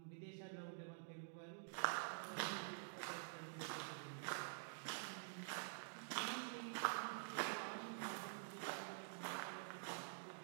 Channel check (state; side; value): silent; left; digital silence